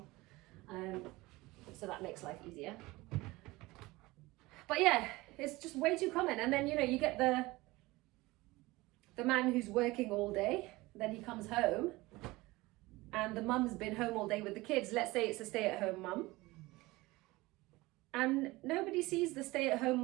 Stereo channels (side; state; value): left; quieter; 20.8 dB